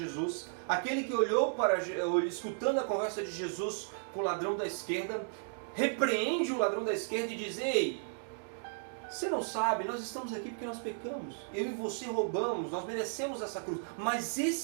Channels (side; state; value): left; silent; digital silence